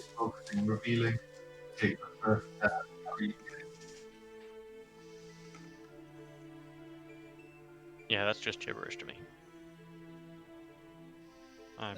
focusing, revealing. Take the first step. Yeah, that's just gibberish to me. I'm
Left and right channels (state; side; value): identical; both; correlation 1.00